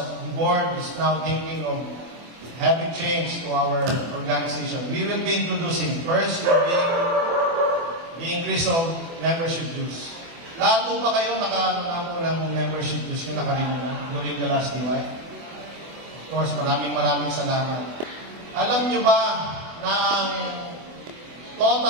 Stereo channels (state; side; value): late; left; 24 ms